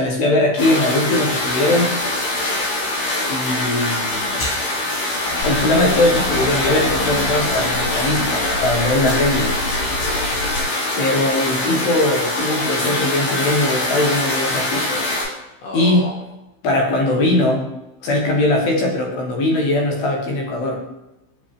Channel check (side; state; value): right; late; 15 ms